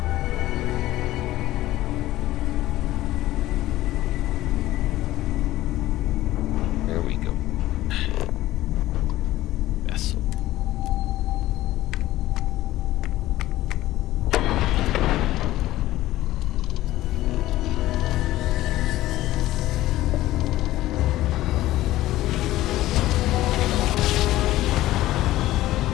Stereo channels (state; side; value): quieter; right; 15.7 dB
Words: There we go. Vessel.